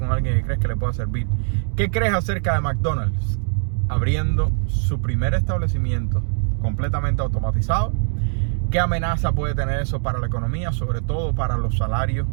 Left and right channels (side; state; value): left; silent; digital silence